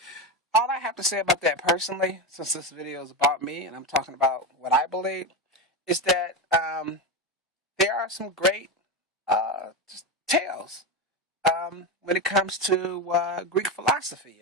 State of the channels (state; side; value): normal; both; correlation 0.16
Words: All I have to say about that personally, since this video is about me and I'm talking about what I believe, is that there are some great tales when it comes to Greek philosophy